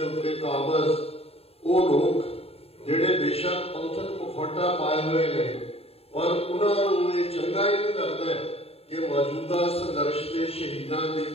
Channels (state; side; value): late; right; 0.29 ms